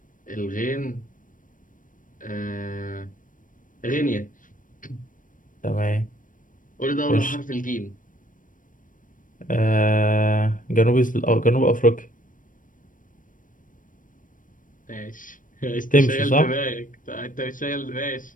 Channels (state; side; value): late; right; 0.38 ms